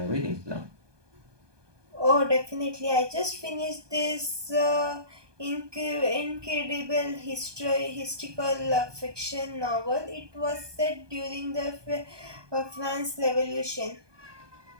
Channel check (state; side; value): late; left; 1.2 ms